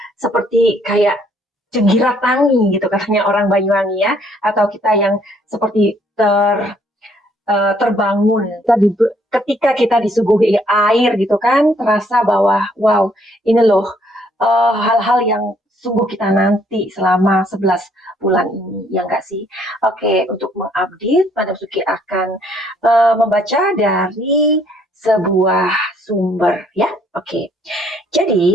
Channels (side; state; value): both; normal; correlation 0.66